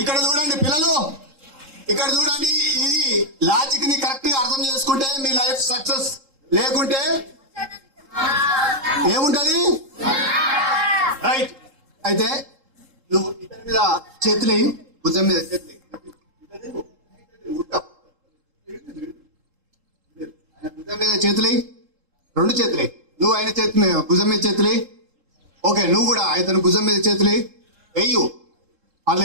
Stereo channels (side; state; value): left; late; 3.7 ms